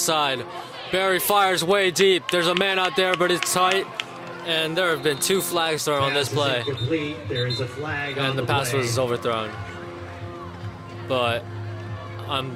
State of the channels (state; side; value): identical; both; correlation 1.00